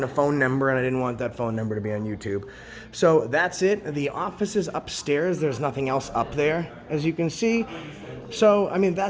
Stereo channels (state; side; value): identical; both; correlation 1.00